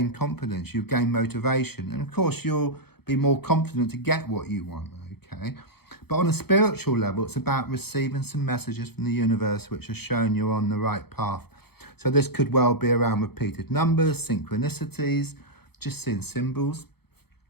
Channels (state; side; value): late; right; 0.96 ms